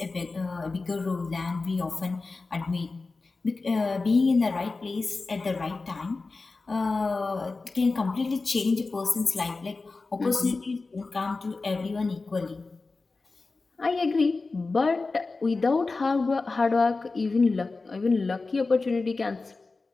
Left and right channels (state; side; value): quieter; right; 3.8 dB